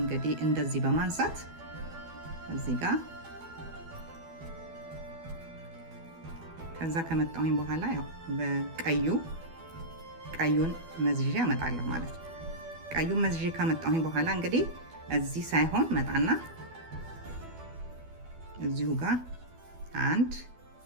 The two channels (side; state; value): left; late; 12 ms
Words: እንደዚህ በማንሳት እዚህ ጋር ከዛ ከመጣሁኝ በኋላ ያው ቀዩን መዝዤ አመጣለሁ ማለት ነው። ቀዩን መዝዤ ካመጣሁኝ በኋላ እንግዲህ እዚህ ሳይሆን መጣና እዚሁ ጋር አንድ